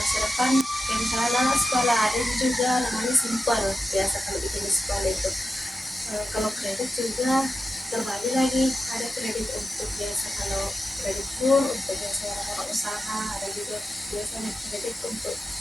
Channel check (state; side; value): normal; both; correlation 0.90